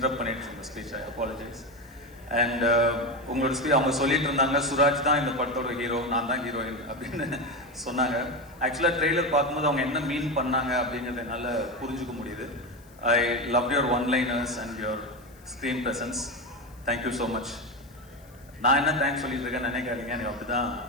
பண்ணிட்டு இருந்தேன் ஸ்பீச், ஐ அப்பாலஜைஸ். அண்ட் உங்களோட ஸ்பீச் அவங்க சொல்லிட்டு இருந்தாங்க, சுராஜ் தான் இந்த படத்தோட ஹீரோ, நான் தான் ஹீரோயின் அப்படின்னு சொன்னாங்க. ஆக்சுவலாக ட்ரெய்லர் பார்க்கும்போது அவங்க என்ன மீன் பண்ணாங்க அப்படிங்கிறத என்னால் புரிஞ்சுக்க முடியுது. I love your one-liners and your screen presence. Thank you so much. நான் என்ன தேங்க்ஸ் சொல்லிட்டு இருக்கேன் நினைக்காதீங்க, எனக்கு அப்படி தான்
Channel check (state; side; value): noise; left; hiss, 28 dB below the sound